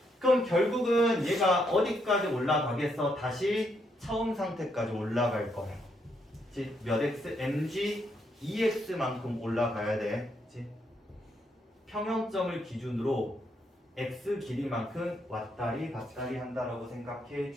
그럼 결국은 얘가 어디까지 올라가겠어? 다시 처음 상태까지 올라갈 거예요. 그치? 몇 x? mg EX만큼 올라가야 돼. 그치? 평형점을 기준으로 X 길이만큼 왔다리 갔다리 한다라고 생각해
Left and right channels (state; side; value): normal; both; correlation 0.76